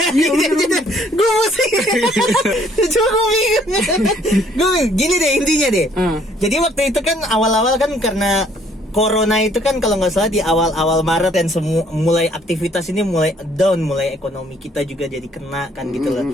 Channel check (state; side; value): normal; both; correlation 0.62